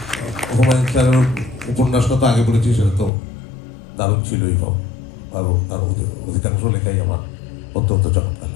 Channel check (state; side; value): drops out; right; at 3.1 s